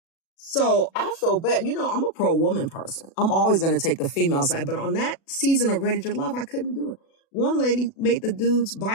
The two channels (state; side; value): late; right; 36 ms